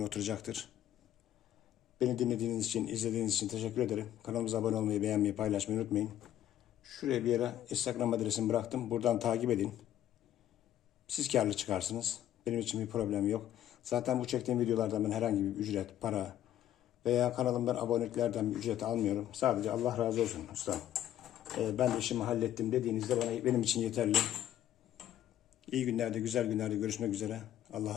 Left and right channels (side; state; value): right; quieter; 11.7 dB